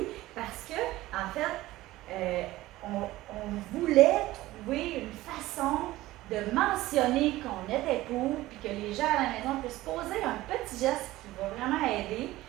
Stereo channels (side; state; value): left; quieter; 17.1 dB